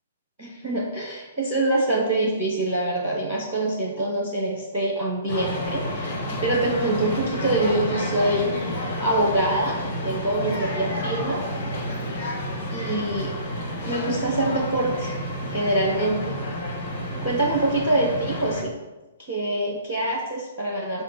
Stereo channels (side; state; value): both; inverted; correlation -0.49